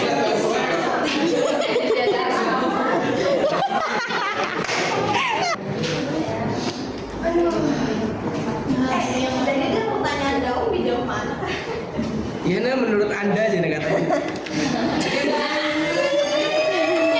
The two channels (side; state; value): both; identical; correlation 1.00